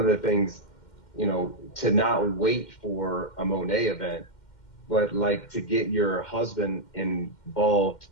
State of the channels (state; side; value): late; right; 2.1 ms